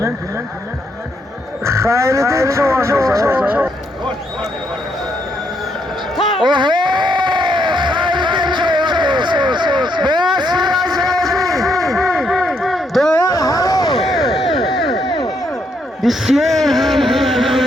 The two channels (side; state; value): both; normal; correlation 0.75